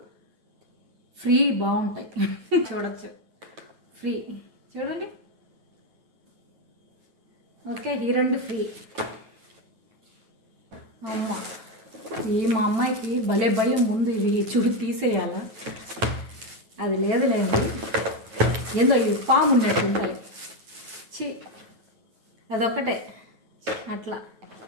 ఫ్రీ బాగుంటాయి. చూడొచ్చు, ఫ్రీ చూడండి. ఓకే, ఈ 2 ఫ్రీ. అమ్మ, మా అమ్మాయికి భలే భయం ముందు ఇవి తీసేయాలా, అది లేదులేండి. ఏందో ఇవి పాము ఉన్నట్టు ఉంటాయి. అదొక్కటే అట్లా.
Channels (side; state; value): left; late; 9.2 ms